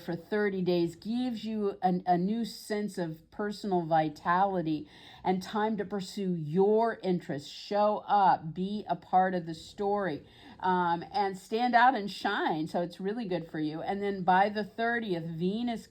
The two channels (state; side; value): identical; both; correlation 1.00